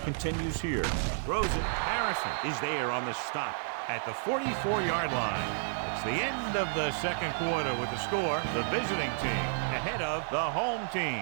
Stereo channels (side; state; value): left; silent; digital silence